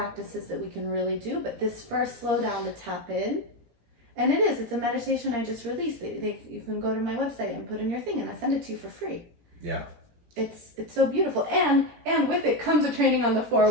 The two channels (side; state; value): left; late; 17 ms